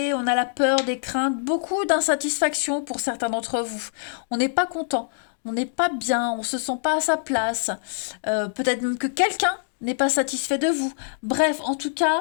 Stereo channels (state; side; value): silent; right; digital silence